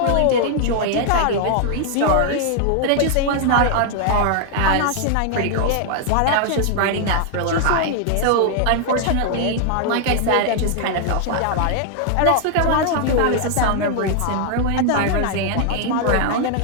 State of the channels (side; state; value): both; different; correlation 0.00